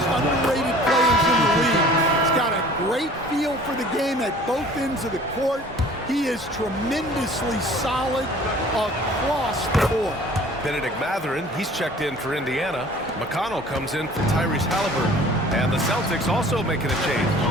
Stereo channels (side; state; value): both; normal; correlation 0.49